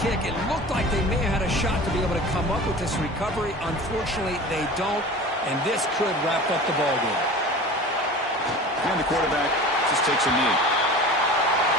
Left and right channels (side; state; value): both; normal; correlation 0.37